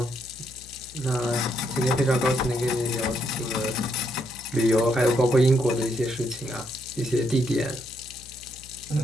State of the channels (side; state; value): left; noise; hum, 21 dB below the sound